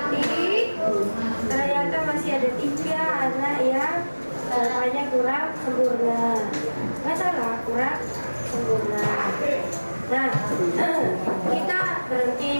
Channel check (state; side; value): inverted; both; correlation -1.00